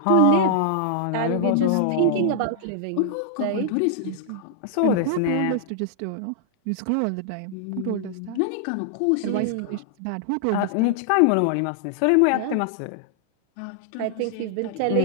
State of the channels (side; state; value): both; different; correlation -0.01